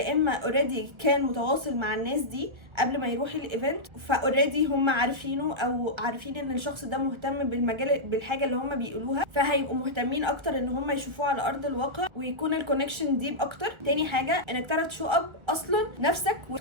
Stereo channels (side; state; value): left; late; 1.4 ms